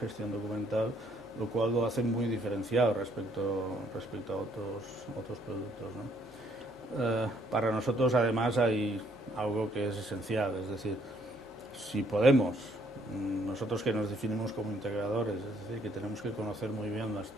documental, lo cual lo hace muy diferenciado respecto a otros productos, ¿no? Para nosotros, además, hay algo que es esencial, es decir, si podemos, nosotros que nos definimos como integradores, es decir, que tenemos que conocer muy bien la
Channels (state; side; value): normal; both; correlation 0.66